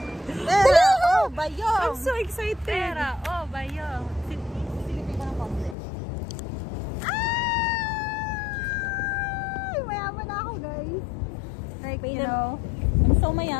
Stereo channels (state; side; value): drops out; right; at 5.8 s